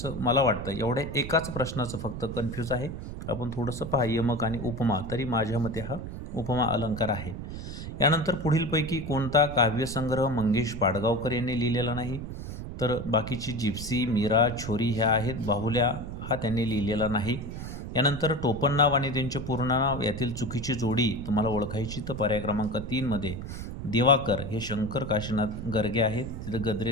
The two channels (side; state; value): right; noise; rumble, 8 dB below the sound